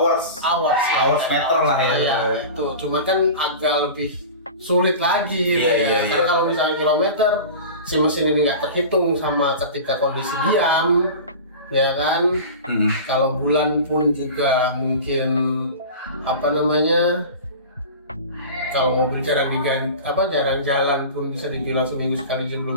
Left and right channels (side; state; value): both; inverted; correlation -0.34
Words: meter lah ya. Iya, itu cuma kan agak lebih sulit lagi. Karena kalau misalnya kilometer si mesin ini nggak terhitung sama ketika kondisi diam, ya kan. Kalau bulan pun juga mungkin kalau mobil jarang jalan pun bisa dibilang seminggu sekali juga